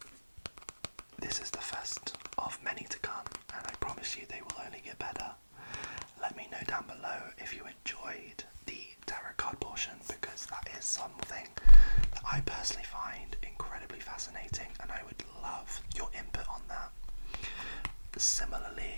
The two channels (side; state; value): both; inverted; correlation -1.00